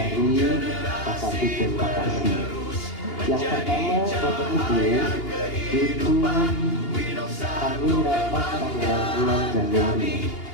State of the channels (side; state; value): right; late; 2.8 ms